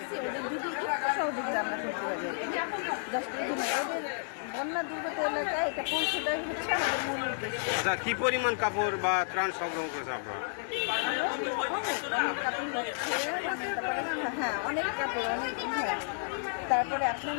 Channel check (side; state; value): right; silent; 57 dB below the other